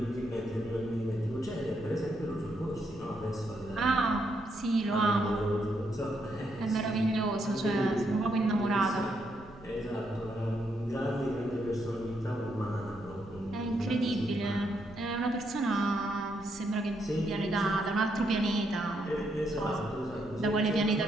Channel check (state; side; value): noise; right; rumble, 21 dB below the sound